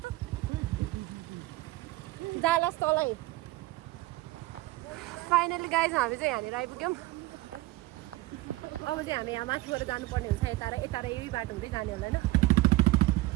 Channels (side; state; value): left; quieter; 18.7 dB